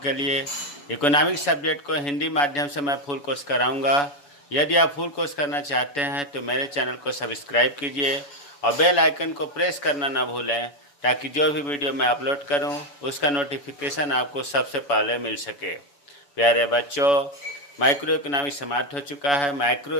लिए इकोनॉमिक्स सब्जेक्ट को हिंदी माध्यम से मैं फुल कोर्स कराऊंगा। यदि आप फुल कोर्स करना चाहते हैं तो मेरे चैनल को सब्सक्राइब कीजिए और बेल आइकन को प्रेस करना ना भूलें, ताकि जो भी वीडियो मैं अपलोड करूँ उसका नोटिफिकेशन आपको सबसे पहले मिल सके। प्यारे बच्चों, माइक्रो इकोनॉमिक्स समाप्त हो चुका है। माइक्रो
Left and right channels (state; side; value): late; right; 7.0 ms